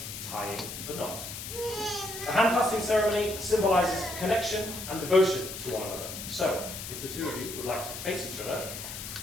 tying the knot. The hand-fasting ceremony symbolizes connection and devotion to one another. So, if the two of you would like to face each other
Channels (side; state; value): left; noise; hiss, 8 dB below the sound